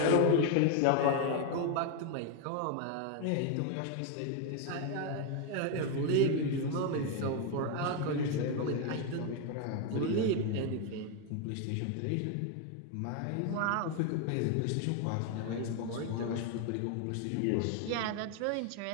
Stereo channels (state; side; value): different; both; correlation 0.01